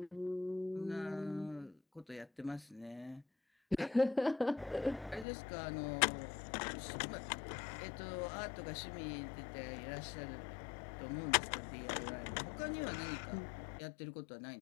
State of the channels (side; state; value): right; drops out; at 5.2 s